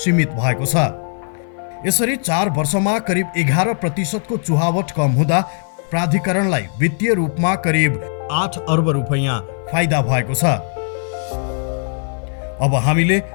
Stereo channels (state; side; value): silent; right; 56 dB below the other